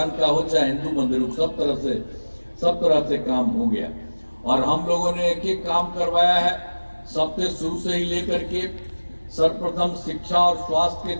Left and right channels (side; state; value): both; inverted; correlation -1.00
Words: का हो चाहे हिंदू मंदिर, सब तरह से काम हो गया। और हम लोगों ने एक एक काम करवाया है, सबसे शुरू से ही लेकर के सर्वप्रथम शिक्षा और स्वास्थ्य के